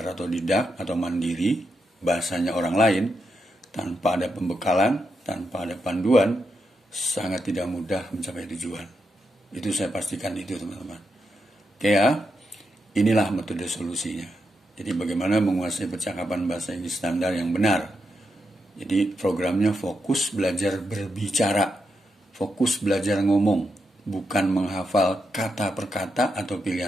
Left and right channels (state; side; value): normal; both; correlation 0.84